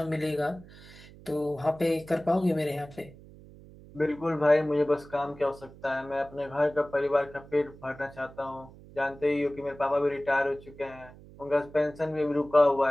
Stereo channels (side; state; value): right; noise; hum, 20 dB below the sound